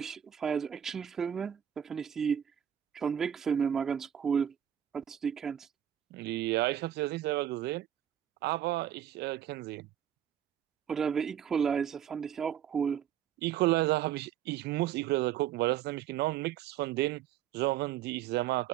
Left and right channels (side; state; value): left; quieter; 10.2 dB